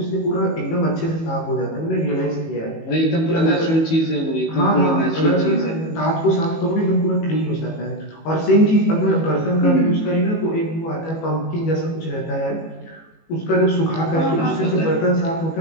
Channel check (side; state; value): right; late; 18 ms